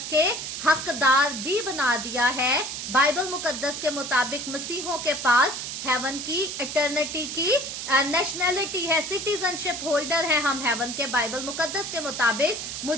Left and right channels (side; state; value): right; noise; hiss, 6 dB below the sound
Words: کے حقدار بھی بنا دیا ہے. بائبل مقدس کے مطابق مسیحوں کے پاس ہیون کی اٹرنیٹی کی نیشنلٹی ہے, سٹیزن شپ ہولڈر ہیں ہم ہیون کے. بائبل مقدس کے مطابق